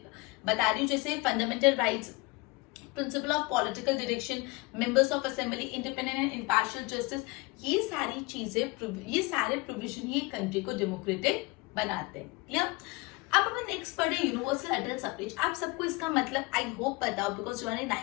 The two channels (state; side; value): quieter; right; 25.7 dB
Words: बता रही हूँ, जैसे fundamental rights, principle of political direction, members of assembly, independent and impartial justice, ये सारी चीजें, ये सारे प्रोविजन ही कंट्री को डेमोक्रेटिक बनाते हैं। क्लियर? अब अपन नेक्स्ट पढ़े यूनिवर्सल एडल्ट सफरेज। आप सबको इसका मतलब आई होप पता हो, because you are in